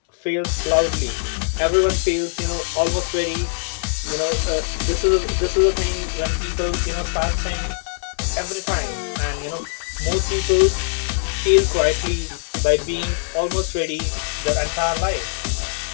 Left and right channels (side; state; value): right; silent; digital silence